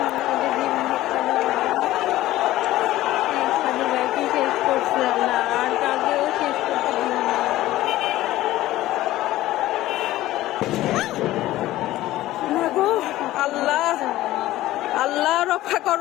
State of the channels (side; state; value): right; quieter; 15.7 dB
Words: ওদের জীবন ভিক্ষা দাও আল্লাহ। সাদি ভাইকে শেষ করছে আল্লাহ, আর কাউকেও শেষ করতে দিও না না গো আল্লাহ আল্লাহ রক্ষা